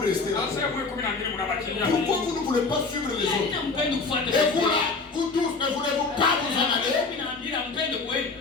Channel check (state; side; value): quieter; right; 4.1 dB